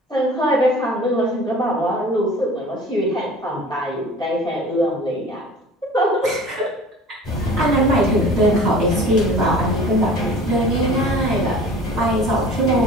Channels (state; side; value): normal; both; correlation 0.43